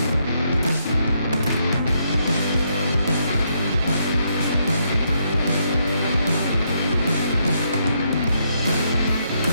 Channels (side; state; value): both; inverted; correlation -0.76